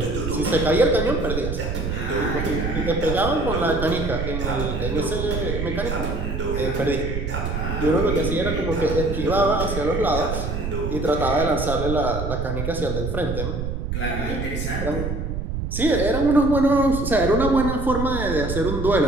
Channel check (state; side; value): noise; right; rumble, 3 dB below the sound